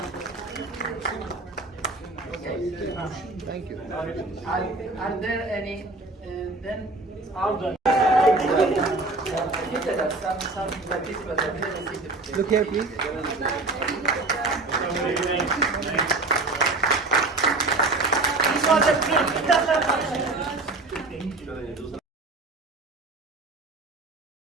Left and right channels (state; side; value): quieter; left; 3.2 dB